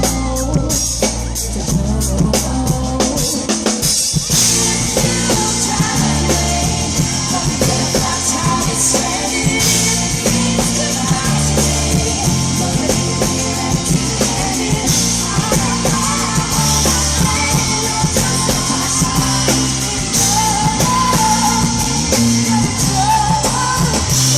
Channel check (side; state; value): both; identical; correlation 1.00